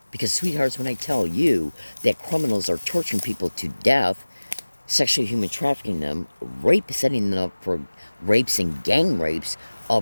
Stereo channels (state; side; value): inverted; both; correlation -1.00